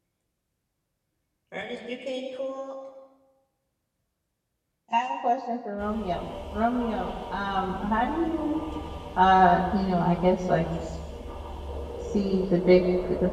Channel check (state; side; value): identical; both; correlation 1.00